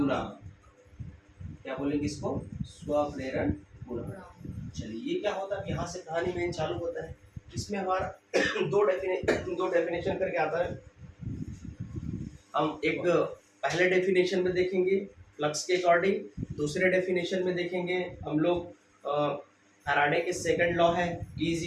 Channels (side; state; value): both; identical; correlation 1.00